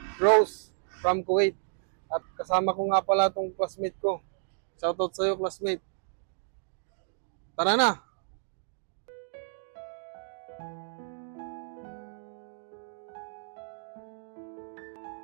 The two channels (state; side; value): silent; left; digital silence